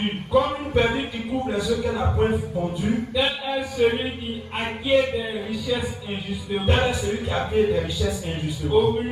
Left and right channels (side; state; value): both; identical; correlation 1.00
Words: Comme une perdrix qui couvre les œufs qu'elle n'a point pondus, Tel est celui qui acquiert des richesses injustement. tel est celui qui a fait des richesses injustement. Au